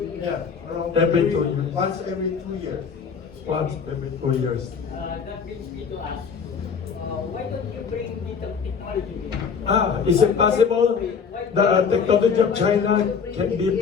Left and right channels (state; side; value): quieter; right; 6.2 dB